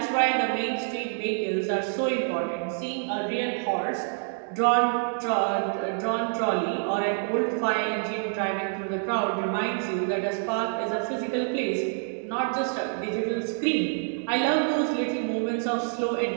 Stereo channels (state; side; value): silent; left; 60 dB below the other